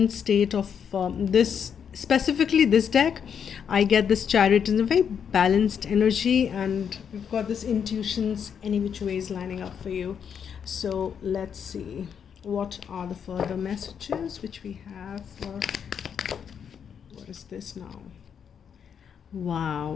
state of this, specifically this deck. I get this Chariot in a very balanced energy, and we've got this intuitions any which ways lining up for you. So let's see what are the further messages which we have for, what is this now?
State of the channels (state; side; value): quieter; right; 7.6 dB